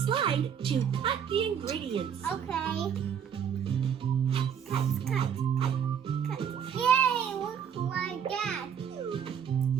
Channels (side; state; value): left; quieter; 8.1 dB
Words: Slide to cut the ingredients. Okay. Cut. Yay, look like that.